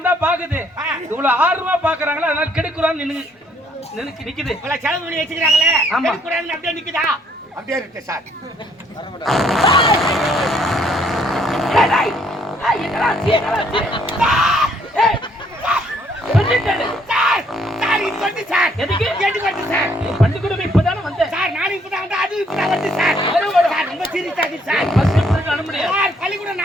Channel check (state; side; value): normal; both; correlation 0.67